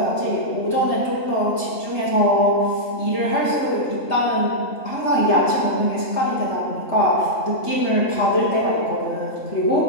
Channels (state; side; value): late; right; 3.3 ms